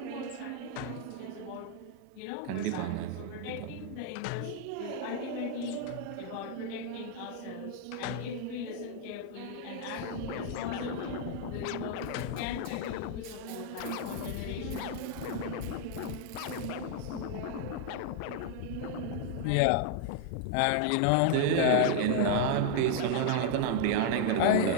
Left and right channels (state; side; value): different; both; correlation -0.01